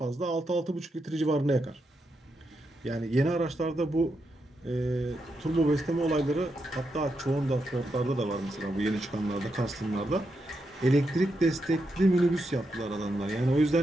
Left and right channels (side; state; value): both; normal; correlation 0.84